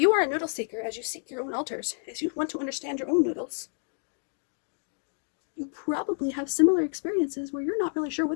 are a noodle seeker, as you seek your own altars, as you want to understand your own noodles, you probably have similar experiences where you're not really sure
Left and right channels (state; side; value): silent; right; digital silence